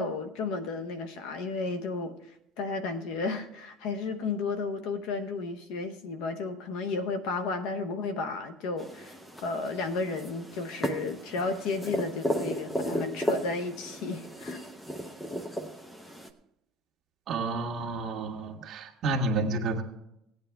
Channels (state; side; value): normal; both; correlation 0.34